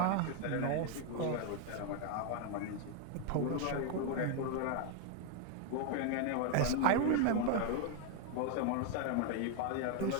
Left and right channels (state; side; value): different; both; correlation 0.01